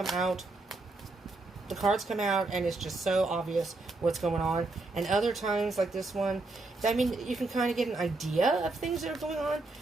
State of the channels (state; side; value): quieter; left; 3.2 dB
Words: out, the cards come out, and it's just so obvious what's going on. And other times, like this one, I mean, you can kind of get an idea of things that are going on.